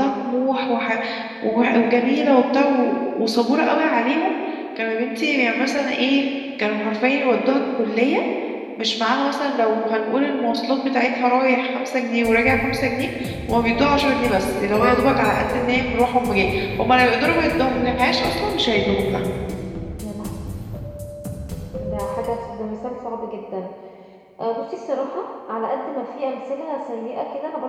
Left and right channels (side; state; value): both; identical; correlation 1.00